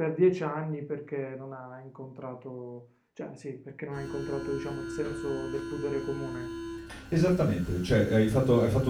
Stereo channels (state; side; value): identical; both; correlation 1.00